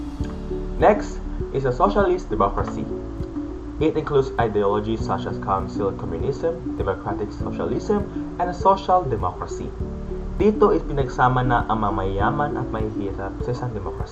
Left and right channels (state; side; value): identical; both; correlation 1.00